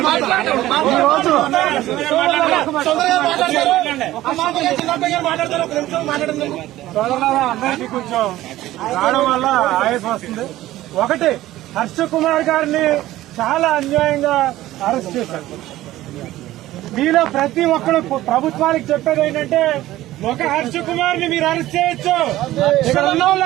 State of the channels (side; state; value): left; quieter; 15.4 dB